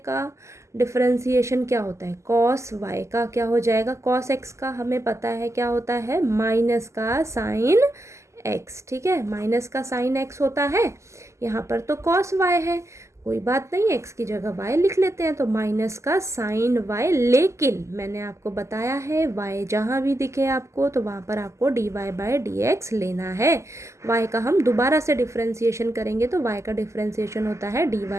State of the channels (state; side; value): late; left; 0.14 ms